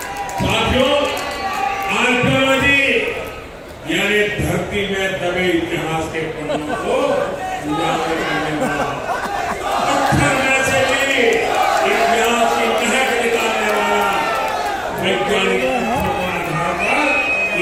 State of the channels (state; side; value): identical; both; correlation 1.00